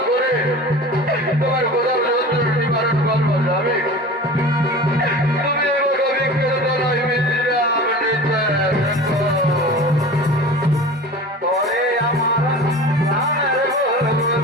করে তোমার কোথাও যন্ত্রণা নিবারণ করবো যাবে। তুমি এবার অভিজ্ঞের দ্বারাই বিশ্রাম নিতে তোরে আমার প্রাণের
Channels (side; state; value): both; normal; correlation 0.36